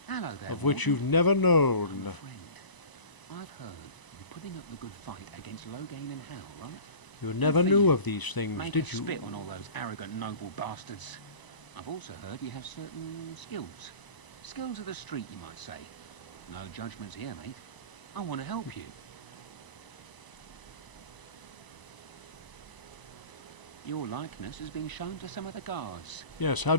Hello there, Of which Warden. you've never known. Friend, I've heard you're putting up the good fight against Loghain and Hal, right? You never knew of these things, Make did a you? spit on all those arrogant noble bastards. I've also heard you have certain skills. Skills of the street, you might say. No judgments here, mate. I want to help you. Your likeness has been shown to some of the guards. Yes, how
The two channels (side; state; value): right; late; 1.0 ms